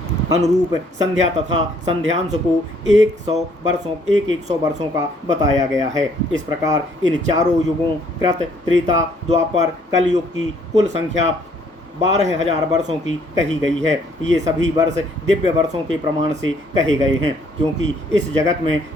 अनुरूप संध्या तथा संध्यांश को 100 वर्षों का बताया गया है। इस प्रकार इन चारों युगों कृत, त्रेता, द्वापर, कलयुग की कुल संख्या 12,000 वर्षों की कही गई है। ये सभी वर्ष दिव्य वर्षों के प्रमाण से कहे गए हैं, क्योंकि इस जगत में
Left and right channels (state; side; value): normal; both; correlation 0.64